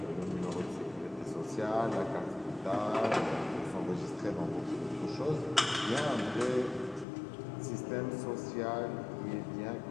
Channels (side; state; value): right; drops out; at 7.1 s